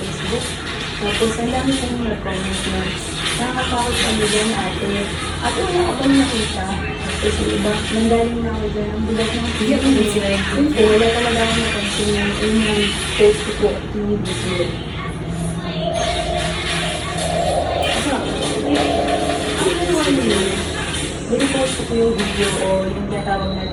Tapos ang dami kong nag-comment na nakakapakot kami dyan ate. At wala ako nakita. Tapos yung iba, nanggaling na ako dyan. Ang bulat ng video. Hindi, wala talaga ako napansin yung unang post ko po yung video. Binipost ko po yung video o yung natawag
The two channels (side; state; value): both; identical; correlation 1.00